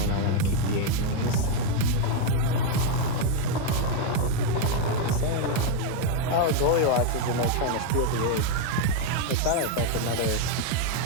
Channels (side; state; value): both; different; correlation 0.01